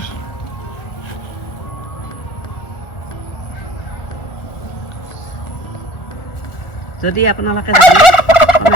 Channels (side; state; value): right; late; 1.4 ms